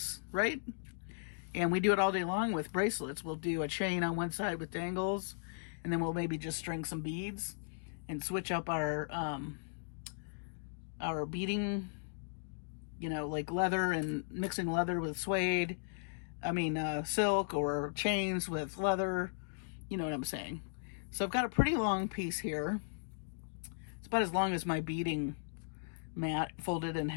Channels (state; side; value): silent; right; digital silence